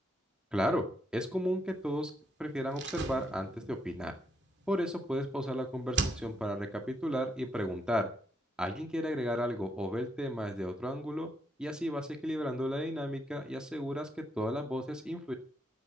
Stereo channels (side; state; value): both; normal; correlation 0.77